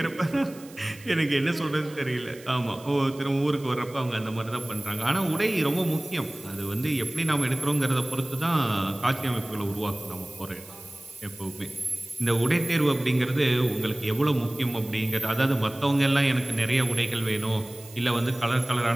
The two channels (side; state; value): right; noise; hiss, 21 dB below the sound